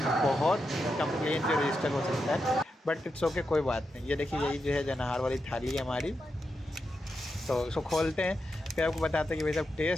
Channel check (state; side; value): normal; both; correlation 0.87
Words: बहुत कंप्लेन जो रजिस्टर हो सकता है, बट इट्स ओके, कोई बात नहीं। ये देखिए यही जो है जन आहार वाली थाली है हमारी। तो इसको खोलते हैं, फिर आपको बताते हैं कि भाई साहब